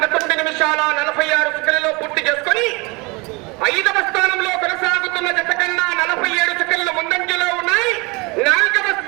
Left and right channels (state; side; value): quieter; left; 26.7 dB